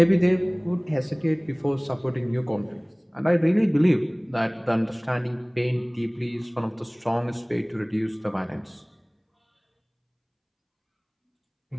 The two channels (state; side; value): identical; both; correlation 1.00